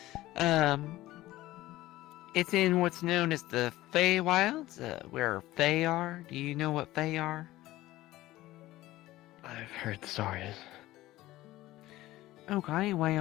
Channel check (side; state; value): right; quieter; 16.6 dB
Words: It's in what's known as the Feywilds, where Fey are. Do you know what Fey are? I've heard stories. Okay,